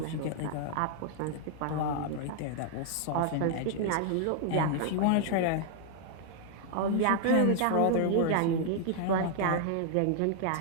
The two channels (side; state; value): both; different; correlation 0.00